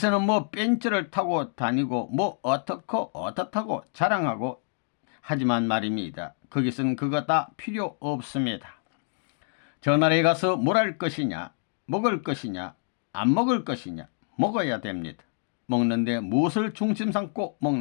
뭐 벤츠를 타고 다니고 뭐 어떻고 어떻다고 자랑하고 하지만 말입니다. 거기서는 그거 다 필요 없습니다. 저 나라에 가서 뭘 할 것이냐, 먹을 것이냐, 안 먹을 것이냐, 먹어야 됩니다. 먹는데 무엇을 중심 삼고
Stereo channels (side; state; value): right; silent; 60 dB below the other